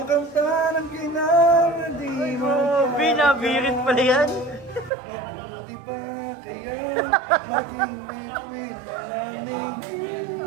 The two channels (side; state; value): left; drops out; at 4.9 s